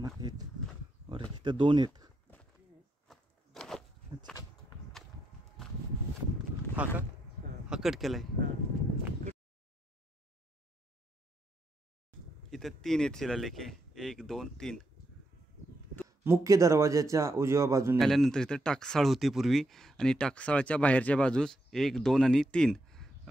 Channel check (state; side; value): normal; both; correlation 0.80